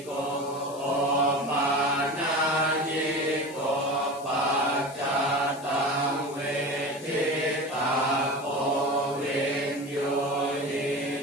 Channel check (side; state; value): left; noise; hiss, 19 dB below the sound